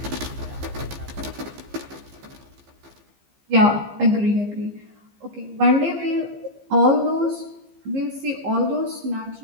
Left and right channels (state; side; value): late; left; 15 ms